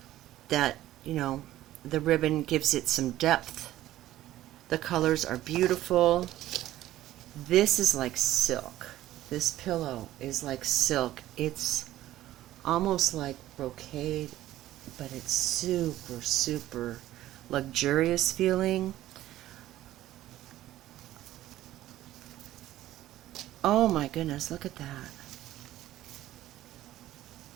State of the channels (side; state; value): left; quieter; 14.4 dB